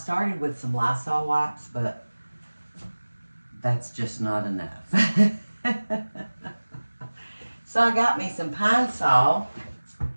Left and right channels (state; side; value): inverted; both; correlation -1.00